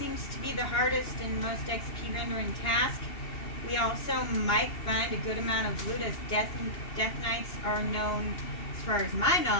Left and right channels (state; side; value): late; right; 2.9 ms